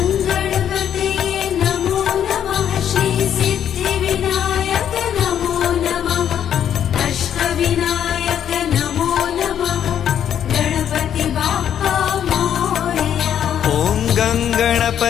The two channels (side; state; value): right; quieter; 9.5 dB